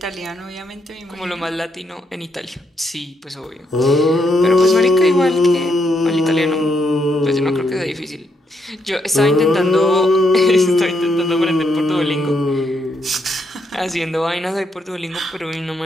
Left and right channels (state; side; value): normal; both; correlation 0.77